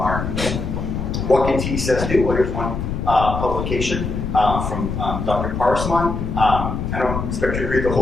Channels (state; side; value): noise; left; rumble, 3 dB below the sound